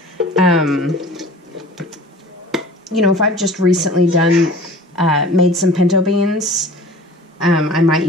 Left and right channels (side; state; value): both; normal; correlation 0.43